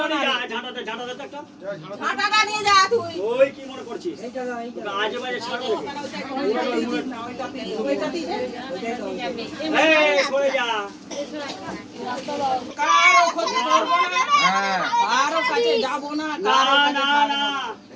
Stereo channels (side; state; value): both; identical; correlation 1.00